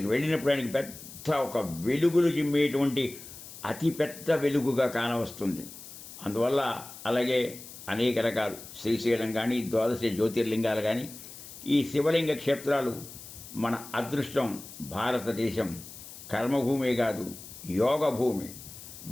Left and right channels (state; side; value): noise; left; hiss, 15 dB below the sound